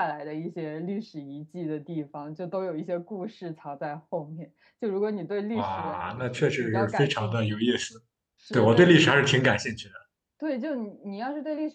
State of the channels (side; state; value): both; identical; correlation 1.00